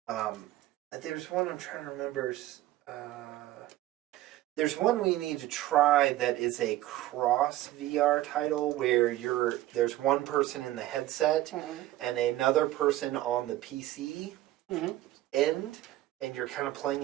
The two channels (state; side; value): quieter; left; 15.3 dB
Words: There's one I'm trying to remember. There's one we need to try that is a cross VR title where there's one person in the headset and another person on the PC end, and you're kind of playing